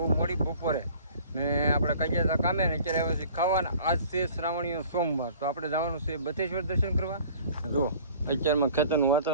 મોડી બપોરે ને આપણે કઈ ગયા હતા કામે ને અત્યારે આવ્યા છીએ ખાવાના. આજ છે શ્રાવણીય સોમવાર, તો આપણે જવાનું છે બથેશ્વર દર્શન કરવા. જો અત્યારમાં ખેતરનું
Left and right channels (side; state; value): both; inverted; correlation -0.49